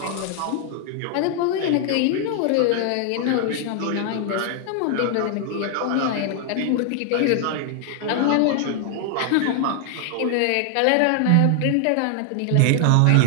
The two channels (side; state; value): both; different; correlation 0.00